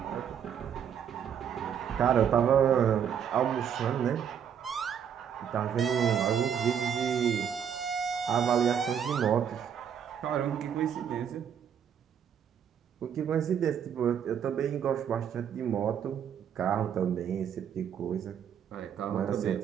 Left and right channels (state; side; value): quieter; left; 8.3 dB